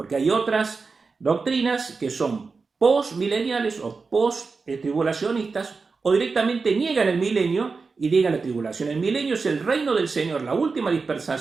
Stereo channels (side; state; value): left; quieter; 4.5 dB